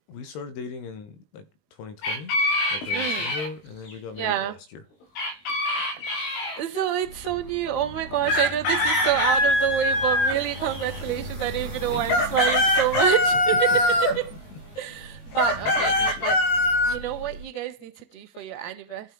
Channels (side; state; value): right; late; 20 ms